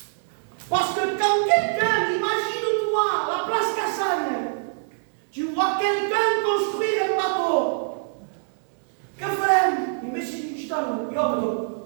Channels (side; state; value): left; silent; digital silence